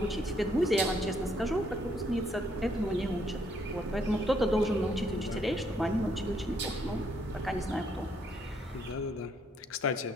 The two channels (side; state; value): both; normal; correlation 0.71